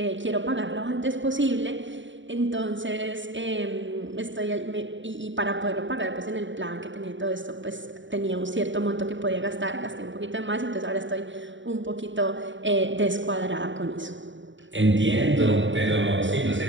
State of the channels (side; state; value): left; late; 0.55 ms